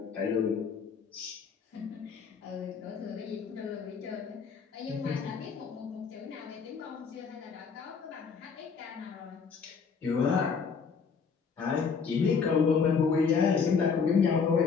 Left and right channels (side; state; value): right; quieter; 5.7 dB